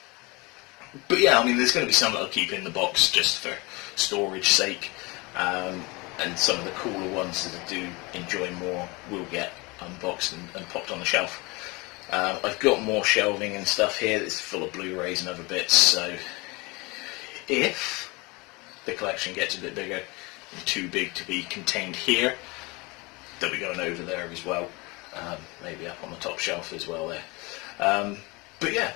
But yeah, I mean, there's going to be some that I'll keep in the box just for storage sake, and some of the cooler ones that I do enjoy more will get unboxed and popped on the shelf. I've got more shelving and stuff here that's full of Blu-rays and other bits, so if the collection gets a bit bigger and too big to be contained here, they'll be going over there as well, maybe up on the top shelf as well there. But yeah,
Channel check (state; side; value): quieter; right; 25.8 dB